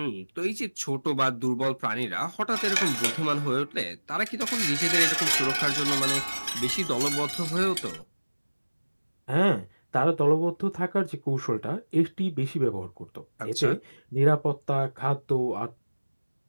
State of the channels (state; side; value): inverted; both; correlation -1.00